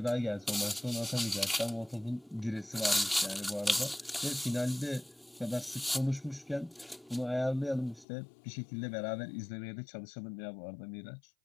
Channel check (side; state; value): right; drops out; at 8.1 s